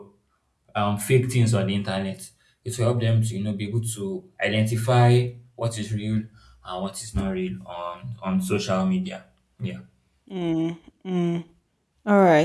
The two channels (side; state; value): both; identical; correlation 1.00